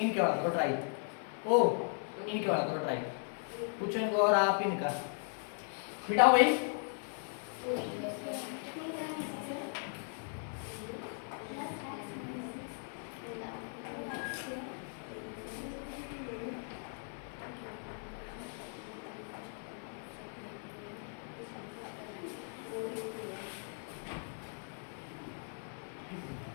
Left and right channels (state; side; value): silent; right; 53 dB below the other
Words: वाला करो ट्राई। ओ इनके वाला करो ट्राई, कुछ इनको और आप इनका मिटाओ भाई।